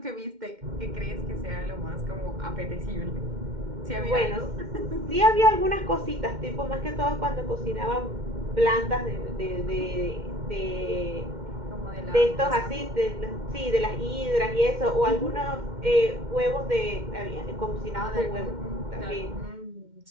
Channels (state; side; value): late; left; 2.1 ms